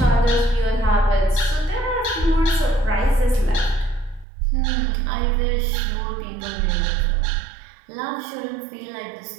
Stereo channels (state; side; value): drops out; left; at 4.2 s